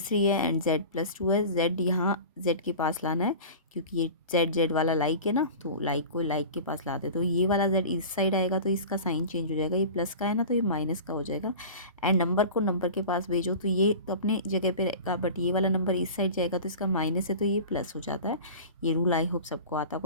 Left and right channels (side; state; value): both; inverted; correlation -0.35